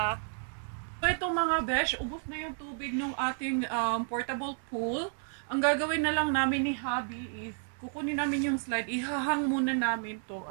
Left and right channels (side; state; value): left; silent; 57 dB below the other